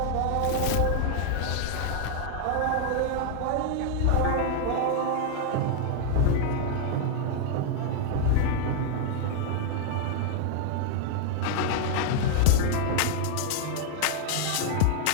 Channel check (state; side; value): different; both; correlation 0.00